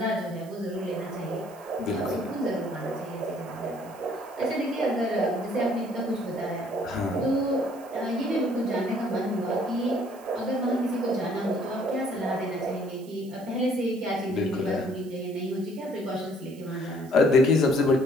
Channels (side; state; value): right; noise; hiss, 24 dB below the sound